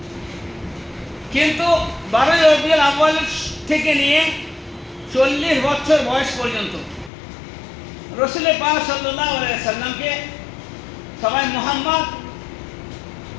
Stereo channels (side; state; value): right; drops out; at 7.1 s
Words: কিন্তু 12 রবিউল আউয়াল থেকে নিয়ে 40 বছর বয়স পর্যন্ত রসুল পাক সাল্লাল্লাহু আলাইহি সাল্লামকে সবাই